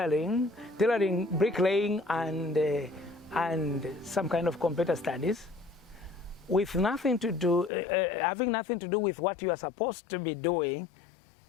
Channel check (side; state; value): right; drops out; at 7.7 s